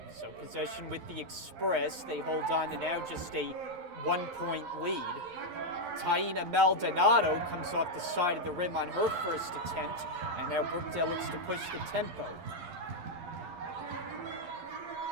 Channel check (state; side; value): late; left; 11 ms